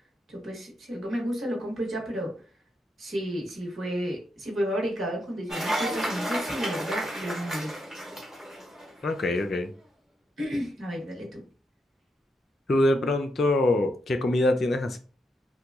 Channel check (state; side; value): normal; both; correlation 0.81